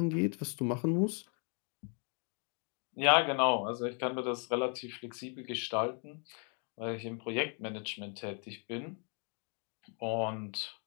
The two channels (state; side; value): quieter; right; 39.6 dB